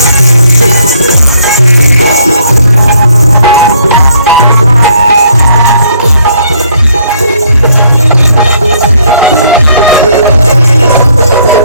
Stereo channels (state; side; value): inverted; both; correlation -0.66